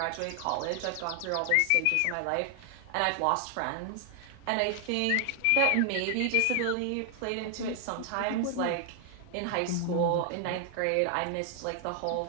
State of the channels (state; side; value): different; both; correlation 0.00